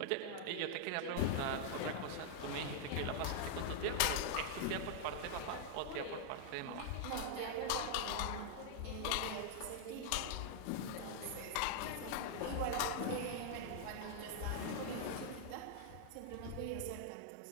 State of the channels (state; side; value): different; both; correlation -0.01